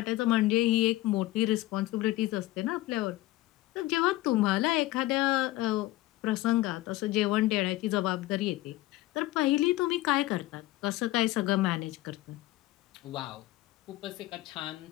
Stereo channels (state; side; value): quieter; right; 17.5 dB